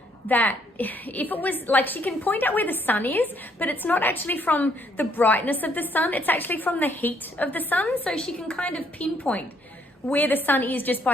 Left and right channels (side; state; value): both; normal; correlation 0.69